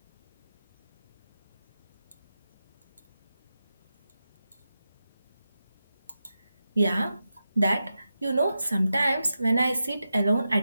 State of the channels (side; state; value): both; inverted; correlation -0.90